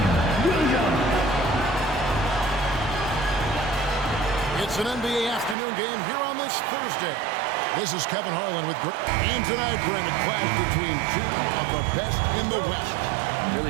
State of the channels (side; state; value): left; drops out; at 5.6 s